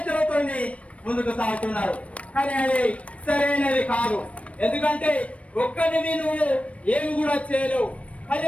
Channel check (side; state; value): right; late; 0.064 ms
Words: ముందుకు సాగుతున్నారు. కానీ అది సరైనది కాదు. ఎందుకంటే ఒక్కరిని నువ్వు ఏమి కూడా చేయలేవు.